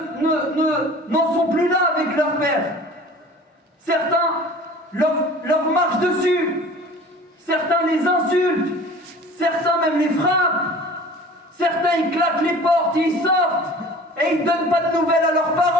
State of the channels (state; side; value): normal; both; correlation 0.43